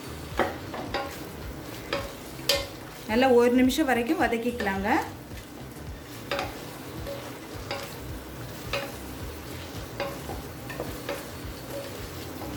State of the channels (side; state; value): both; identical; correlation 1.00